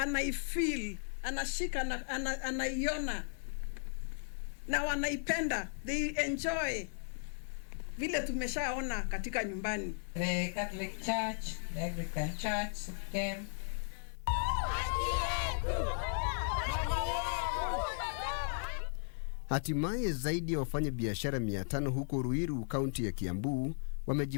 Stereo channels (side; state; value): right; silent; digital silence